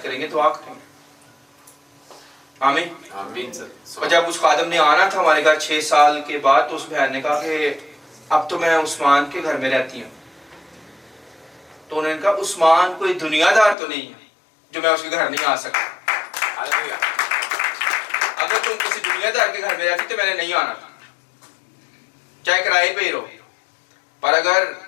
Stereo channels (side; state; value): right; drops out; at 13.8 s